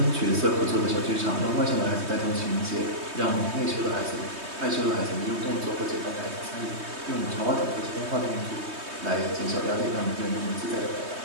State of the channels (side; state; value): left; late; 3.2 ms